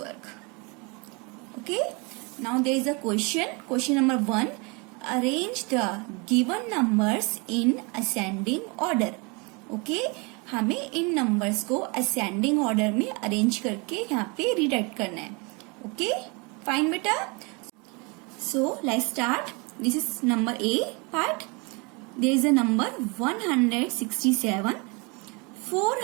Okay, now there is a question. Question number 1. Arrange the given numbers in ascending order. Okay, हमें इन numbers को ascending order में arrange करके यहाँ पे rewrite करना है. Okay, fine बेटा. So let's start. This is number A part. There is a number 167,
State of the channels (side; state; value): left; quieter; 30.0 dB